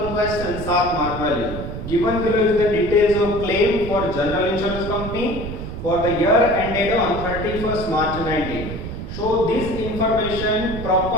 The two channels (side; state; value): right; noise; rumble, 8 dB below the sound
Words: question 7 mark value. Given below is the details of claim for general insurance company for the year ended on 31st March 19. Show this information